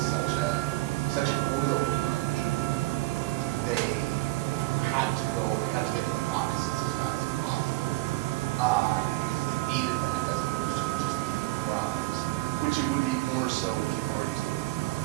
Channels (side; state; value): left; quieter; 20.4 dB